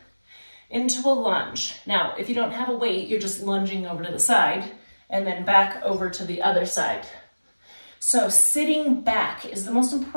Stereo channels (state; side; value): inverted; both; correlation -1.00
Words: into a lunge. Now, if you don't have a weight, you're just lunging over to the side and then back over to the other side. So sitting back is the most